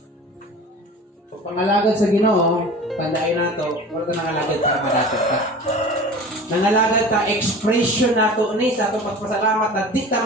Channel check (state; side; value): normal; both; correlation 0.38